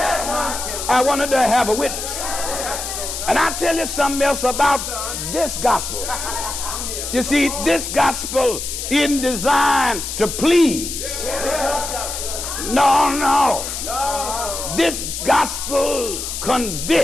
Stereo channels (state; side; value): noise; left; hiss, 5 dB below the sound